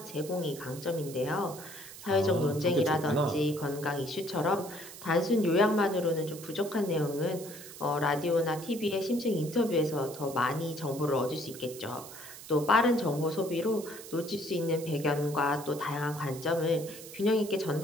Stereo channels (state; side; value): noise; right; hiss, 14 dB below the sound